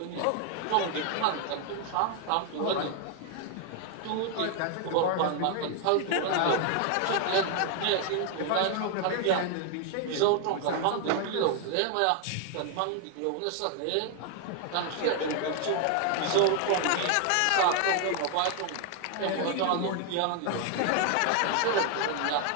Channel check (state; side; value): different; both; correlation 0.00